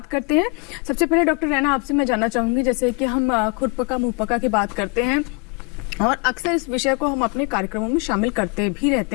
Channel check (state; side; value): quieter; right; 32.4 dB